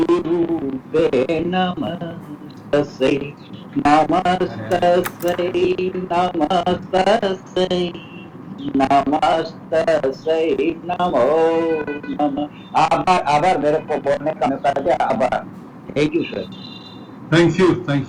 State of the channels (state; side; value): identical; both; correlation 1.00